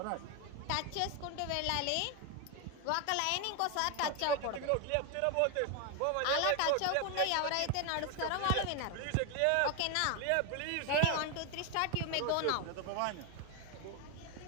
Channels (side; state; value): both; different; correlation 0.01